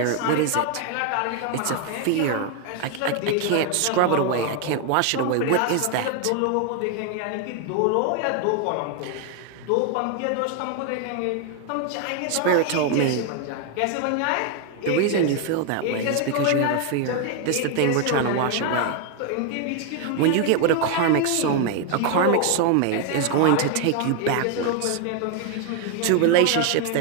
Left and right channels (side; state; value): both; different; correlation 0.01